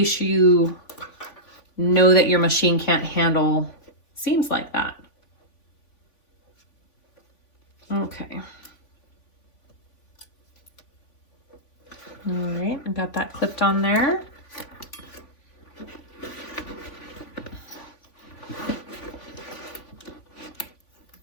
you know that your machine can't handle seams like that. Okay. All right, I got that clipped on there.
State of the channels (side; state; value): right; late; 3.5 ms